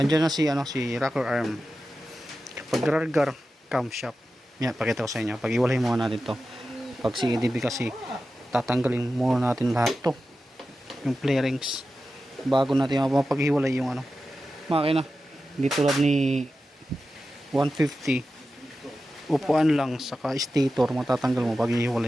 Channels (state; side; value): normal; both; correlation 0.92